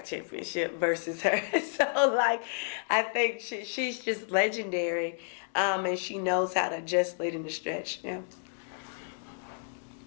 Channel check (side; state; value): right; silent; digital silence